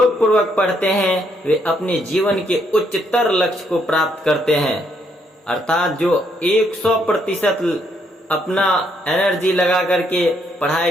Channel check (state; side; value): normal; both; correlation 0.73